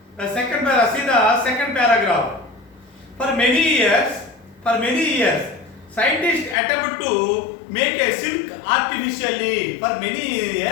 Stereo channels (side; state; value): right; drops out; at 6.6 s